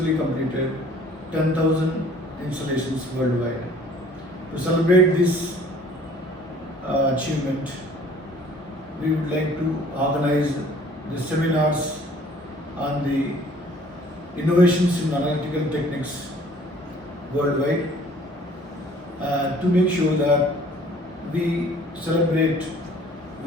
completed 10,000 installations worldwide. To celebrate this achievement, we would like to organize the seminars on the innovations in analytical techniques worldwide, to make sure that we celebrate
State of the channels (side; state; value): both; normal; correlation 0.54